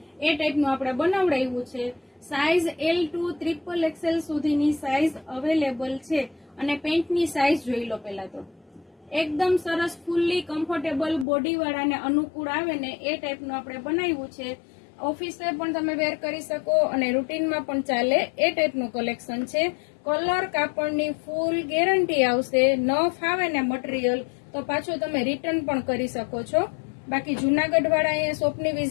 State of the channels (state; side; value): drops out; right; at 11.2 s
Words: એ ટાઈપનું આપણે બનાવડાવ્યું છે. સાઇઝ L2 ટ્રિપલ XL સુધીની સાઇઝ અવેલેબલ છે અને પેન્ટની સાઇઝ જોઈ લો. પહેલા તો એકદમ સરસ ફૂલ્લી કમ્ફર્ટેબલ બોડીવાળાને અનુકૂળ આવે ને એ ટાઈપનું આપણે બનાવ્યું છે. ઓફિસે પણ તમે વેર કરી શકો અને રૂટીનમાં પણ ચાલે એ ટાઈપનું કલેક્શન છે. કલર કાપડની ફૂલ ગેરંટી આવશે. ન ફાવે ને મટીરિયલ તો પાછું તમે રિટર્ન પણ કરી શકો છો. બાકી જુનાગઢ વાળા અહીંયા શોપની